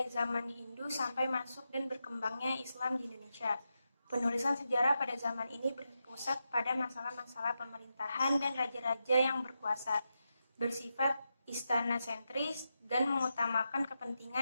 zaman Hindu sampai masuk dan berkembangnya Islam di Indonesia. Penulisan sejarah pada zaman ini berpusat pada masalah-masalah pemerintahan dan raja-raja yang berkuasa, bersifat istana sentris dan mengutamakan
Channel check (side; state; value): both; inverted; correlation -0.87